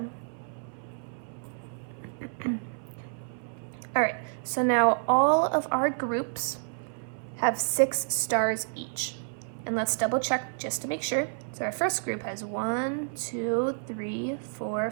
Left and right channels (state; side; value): silent; left; 58 dB below the other